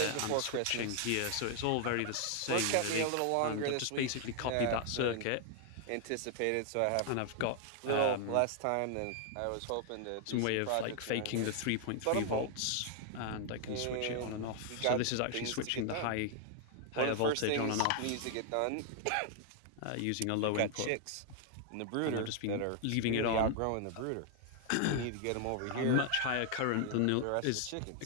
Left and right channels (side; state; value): both; different; correlation 0.00